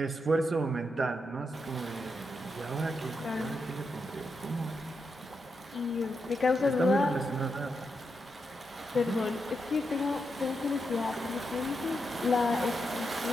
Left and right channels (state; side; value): normal; both; correlation 0.84